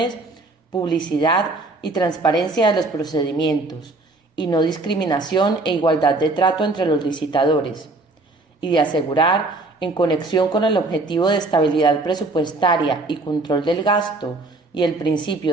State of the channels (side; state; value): left; quieter; 3.2 dB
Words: publicidad y transparencia de los procedimientos, y no discriminación e igualdad de trato entre los licitadores, y de asegurar, en conexión con el objetivo de estabilidad presupuestaria y control del gasto y el